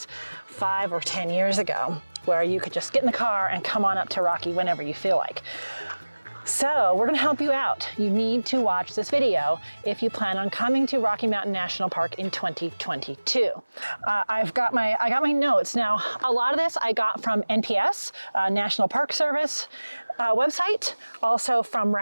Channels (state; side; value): inverted; both; correlation -1.00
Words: 5 or 10 years ago where you could just get in the car and come on up to Rocky whenever you feel like. So we're gonna help you out. You need to watch this video if you plan on coming to Rocky Mountain National Park in 2022. I got my notes. Now, a lot of this I got from NPS, National Park Service website, also from